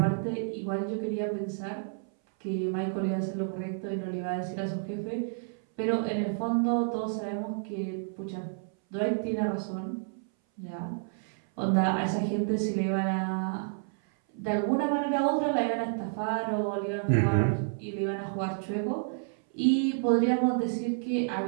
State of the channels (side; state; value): left; silent; 58 dB below the other